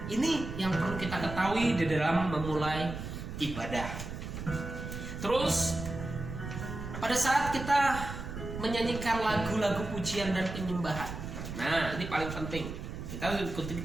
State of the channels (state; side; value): noise; right; rumble, 8 dB below the sound